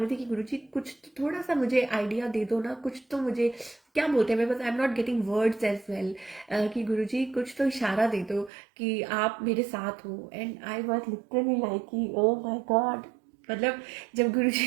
थी कि गुरुजी कुछ तो थोड़ा सा मुझे आइडिया दे दो ना, कुछ तो मुझे, क्या बोलते हैं, मैं बस I am not getting words as well, कि गुरुजी कुछ तो इशारा दे दो कि आप मेरे साथ हो। And I was literally like कि ओ माय गॉड, मतलब जब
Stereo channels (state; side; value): drops out; left; at 8.5 s